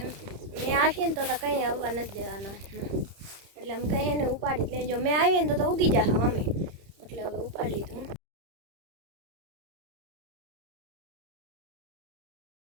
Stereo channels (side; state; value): left; late; 30 ms